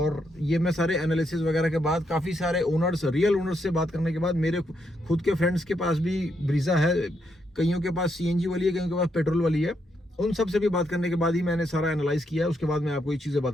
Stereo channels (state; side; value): normal; both; correlation 0.78